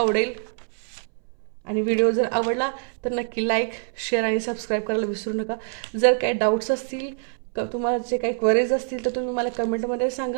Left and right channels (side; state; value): left; silent; 62 dB below the other